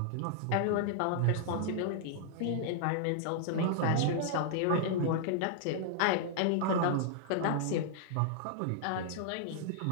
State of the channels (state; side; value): different; both; correlation -0.01